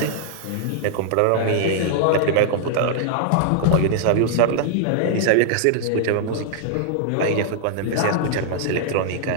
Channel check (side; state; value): both; different; correlation -0.01